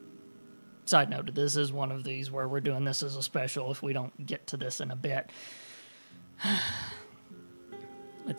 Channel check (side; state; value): both; inverted; correlation -1.00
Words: Side note, this is one of these where we're doing this as a special if we don't get to this in a bit.